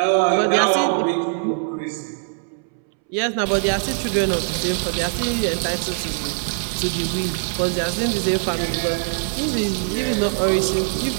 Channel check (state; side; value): silent; left; 64 dB below the other